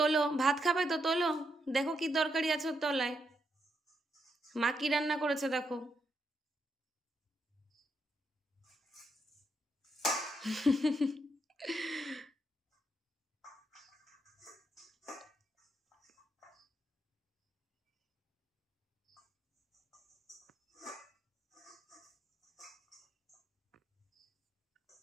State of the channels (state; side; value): normal; both; correlation 0.80